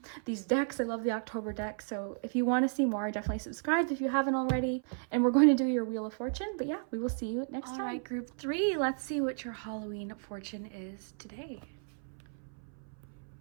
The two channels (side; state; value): left; silent; 55 dB below the other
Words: these decks. I love the October deck. So if you want to see more, definitely subscribe if you haven't already. And we're going to do your Wheel of Fortune. But yeah, we will see you next time. All right, group 3. Let's see what your Halloween fortune is today.